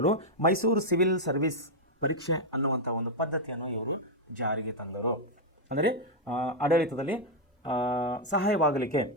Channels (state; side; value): normal; both; correlation -0.01